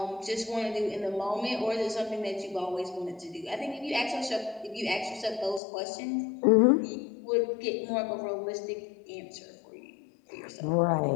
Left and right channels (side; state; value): right; drops out; at 5.6 s